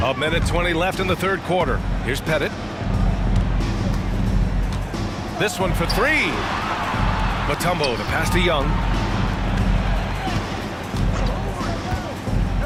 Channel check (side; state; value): both; identical; correlation 1.00